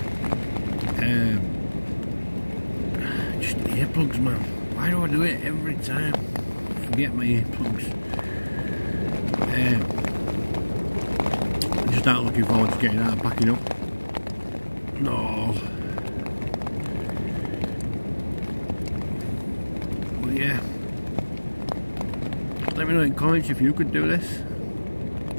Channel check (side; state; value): both; inverted; correlation -1.00